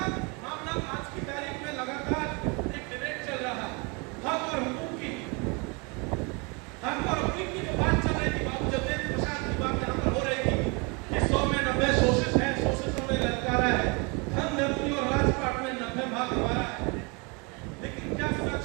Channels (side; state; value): left; quieter; 30.5 dB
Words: मामला आज की तारीख में लगातार एक डिबेट चल रहा है, हक और हुकूक की, हक और हुकूक की जो बात चल रही थी, बाबू जगदेव प्रसाद की बात यहाँ पर हो रही थी कि 100 में 90 शोषित है, शोषितों में ललकारा है, धन धरती और राजपाट में 90 भाग हमारा है। लेकिन क्या सच